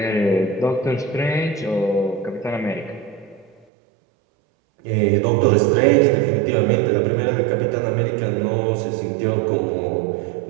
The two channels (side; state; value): left; drops out; at 3.7 s